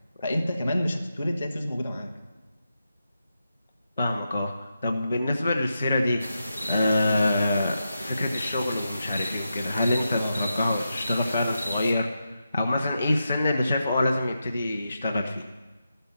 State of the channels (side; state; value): both; inverted; correlation -0.87